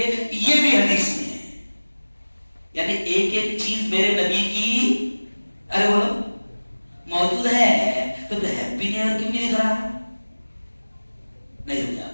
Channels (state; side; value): inverted; both; correlation -1.00